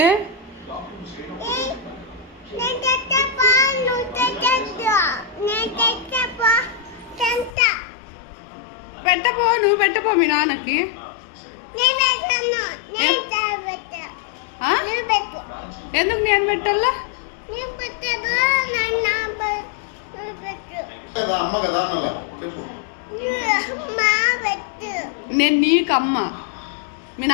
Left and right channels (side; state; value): right; drops out; at 7.6 s